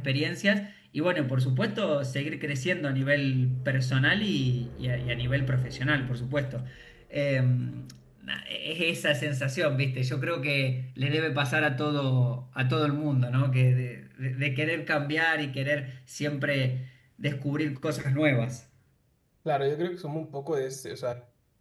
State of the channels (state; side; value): identical; both; correlation 1.00